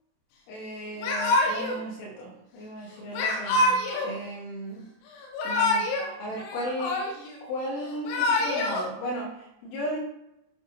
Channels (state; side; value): late; right; 27 ms